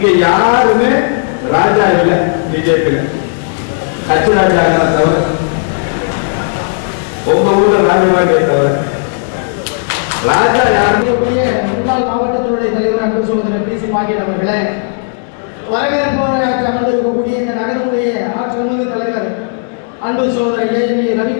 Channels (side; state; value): right; silent; digital silence